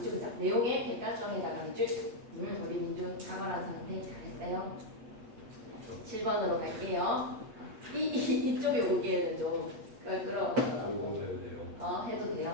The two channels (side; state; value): left; late; 8.6 ms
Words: 그자. 내용의 객관성에다가 밑줄. 우리 민준 사과한 상태 잘했어요. 7번으로 갈게요. 이쪽에 오기에는 좀 끌어와서 해도